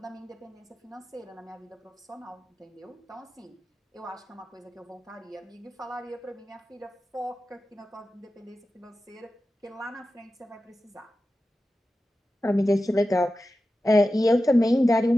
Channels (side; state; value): both; normal; correlation 0.93